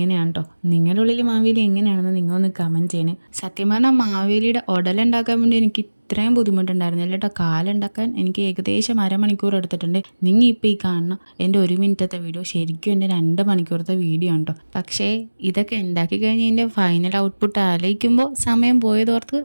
കേട്ടോ. നിങ്ങളുടെ ഉള്ളിൽ മാവേലി എങ്ങനെയാണെന്ന് നിങ്ങളൊന്ന് കമൻറ്റ് ചെയ്യണേ. സത്യം പറഞ്ഞാൽ മാവേലിയുടെ ഉടലുണ്ടാക്കാൻ വേണ്ടി എനിക്ക് ഇത്രയും ബുദ്ധിമുട്ടുണ്ടായിരുന്നില്ല കേട്ടോ. കാലുണ്ടാക്കാൻ എനിക്ക് ഏകദേശം അരമണിക്കൂർ എടുത്തിട്ടുണ്ട്. നിങ്ങൾ ഇപ്പോൾ ഈ കാണുന്ന എൻ്റെ 1 മിനിറ്റത്തെ വീഡിയോ ശരിക്കും എൻ്റെ 2 മണിക്കൂറത്തെ വീഡിയോ ഉണ്ടോ. പക്ഷേ ഇതൊക്കെ ഉണ്ടാക്കി കഴിഞ്ഞ് എൻ്റെ ഫൈനൽ ഔട്ട്പുട്ട് ആലോചിക്കുമ്പോൾ സമയം പോയതോർത്ത്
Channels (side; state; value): both; inverted; correlation -1.00